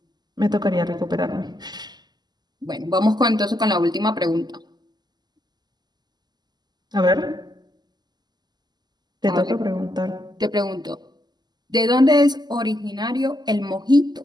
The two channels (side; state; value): left; late; 0.20 ms